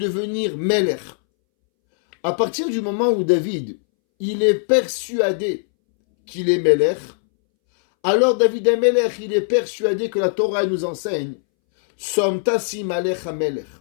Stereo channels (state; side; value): silent; right; 64 dB below the other